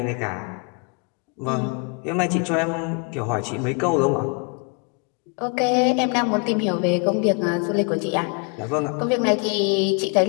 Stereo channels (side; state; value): right; quieter; 34.9 dB